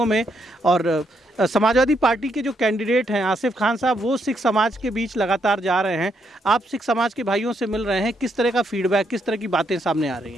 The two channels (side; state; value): both; normal; correlation 0.76